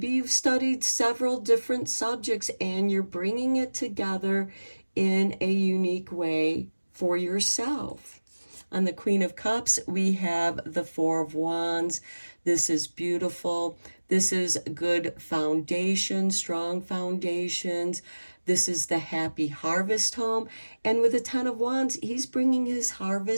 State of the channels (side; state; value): both; inverted; correlation -1.00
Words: you've studied several different subjects and you're bringing it together in a unique way for yourself. On the Queen of Cups, we have the Four of Wands. This is beautiful. This is good foundation, strong foundations. This is the happy harvest home. And with the 10 of Wands, he's bringing his